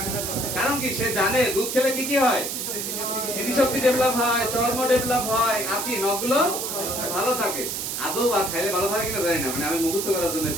কারণ কি সে জানে দুধ খেলে কি কি হয়? স্মৃতিশক্তি ডেভেলপ হয়, চর্ম ডেভেলপ হয়, আর কি নখগুলো ভালো থাকে। আদৌ বা খাইলে ভালো থাকে কিনা জানি না, মানে আমি মুখস্থ করার জন্য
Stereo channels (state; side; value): noise; right; hiss, 3 dB below the sound